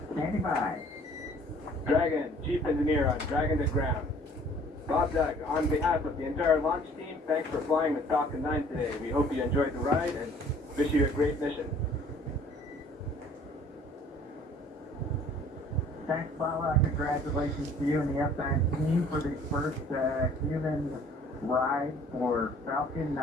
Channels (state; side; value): normal; both; correlation 0.54